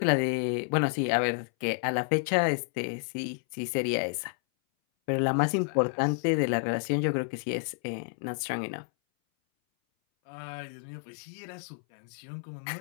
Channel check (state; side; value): silent; right; 58 dB below the other